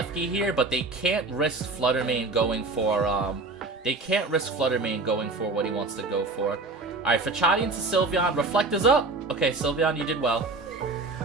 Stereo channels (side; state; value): left; quieter; 3.5 dB